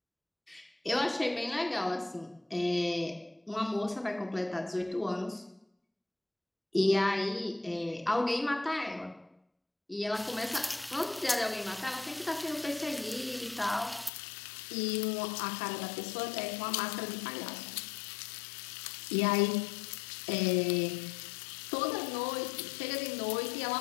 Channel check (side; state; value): right; drops out; at 14.1 s